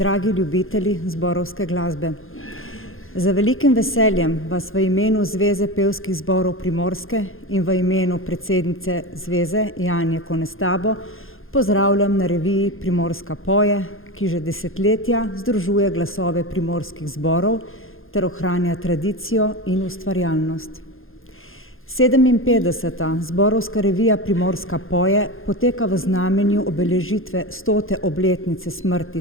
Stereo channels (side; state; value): right; late; 0.60 ms